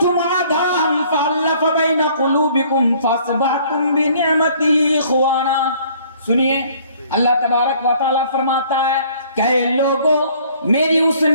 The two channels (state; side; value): inverted; both; correlation -0.57